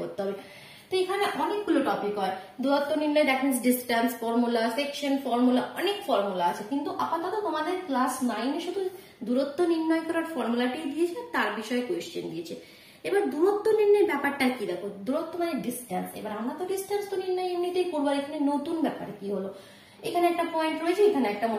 হবে। তো এখানে অনেকগুলো টপিক হয়, দূরত্ব নির্ণয়, that means distance formula, section formula, অনেক ফর্মুলা আছে। কিন্তু আপাতত তোমাদের ক্লাস 9 এ শুধু দূরত্ব নির্ণয় করার ফর্মুলাটি দিয়েছে, তার বিষয়ে কোয়েশ্চেন দিয়েছে। এবার দূরত্ব নির্ণয়ের ব্যাপারটা কি দেখো, দূরত্ব মানে ডিস্টেন্স। এবার আমরা তো ডিস্টেন্স তো নির্ণয় এমনিতেই করবো, এখানে নতুন ব্যাপার কি হলো, এখানে একটা পয়েন্ট রয়েছে, এখানে একটা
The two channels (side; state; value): both; identical; correlation 1.00